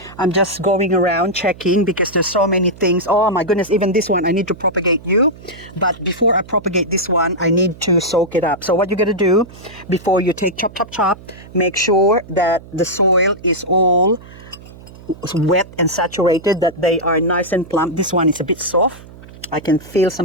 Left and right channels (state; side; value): noise; right; hum, 19 dB below the sound